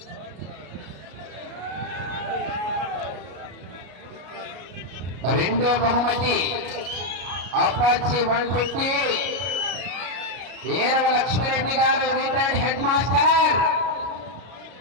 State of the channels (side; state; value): left; late; 33 ms